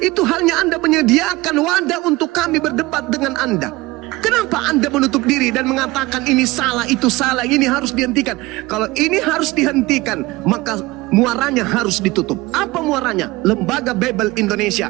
halnya Anda menyediakan wadah untuk kami berdebat dengan Anda. Kenapa Anda menutup diri dan mengatakan ini salah, itu salah, ini harus dihentikan? Kalau ini harus dihentikan, maka muaranya harus ditutup. Apa muaranya? Lembaga Babel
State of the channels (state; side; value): quieter; left; 20.7 dB